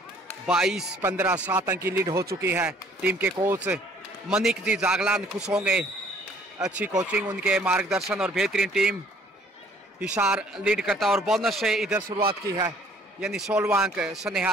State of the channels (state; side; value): normal; both; correlation 0.59